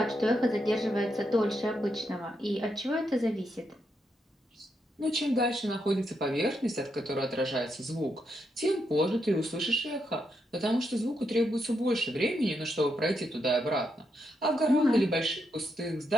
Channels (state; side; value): normal; both; correlation 0.81